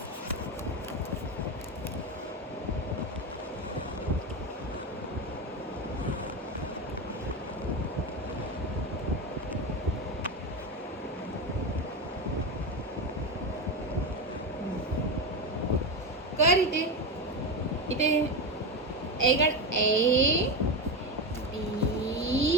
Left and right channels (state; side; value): normal; both; correlation 0.16